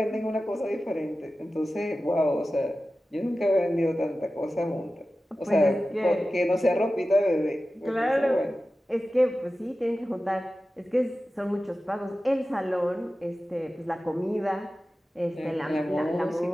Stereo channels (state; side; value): normal; both; correlation 0.94